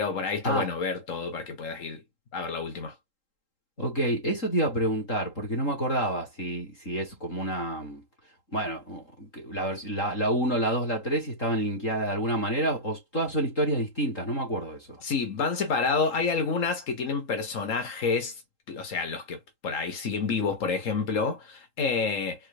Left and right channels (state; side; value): late; right; 3.8 ms